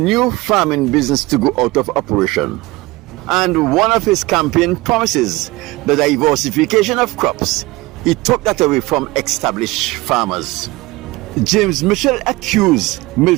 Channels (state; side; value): quieter; left; 21.1 dB